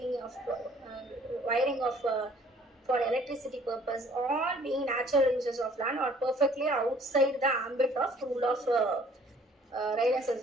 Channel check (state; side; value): normal; both; correlation 0.56